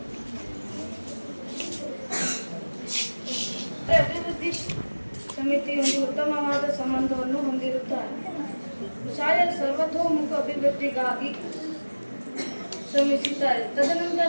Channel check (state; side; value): inverted; both; correlation -1.00